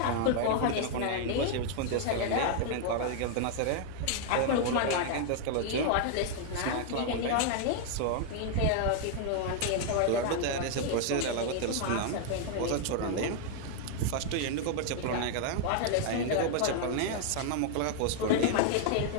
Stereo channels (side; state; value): both; different; correlation 0.00